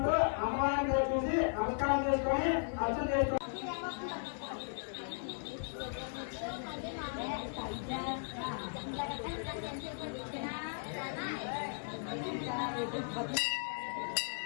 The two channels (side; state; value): right; silent; digital silence